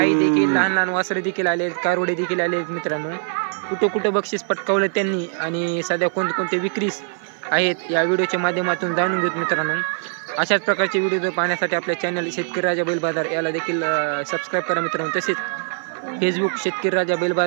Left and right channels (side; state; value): left; silent; 57 dB below the other